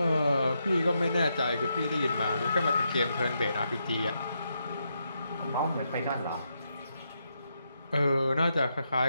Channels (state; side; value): inverted; both; correlation -0.82